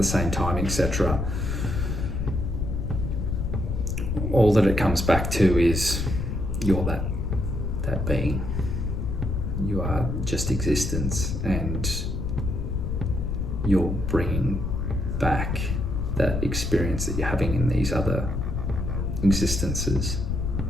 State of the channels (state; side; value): noise; left; rumble, 1 dB below the sound